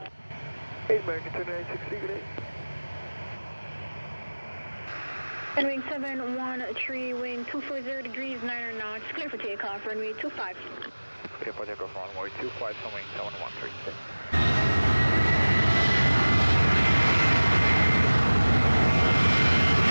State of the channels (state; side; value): inverted; both; correlation -1.00